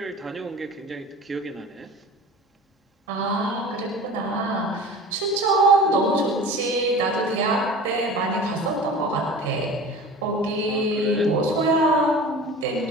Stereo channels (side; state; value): both; normal; correlation 0.38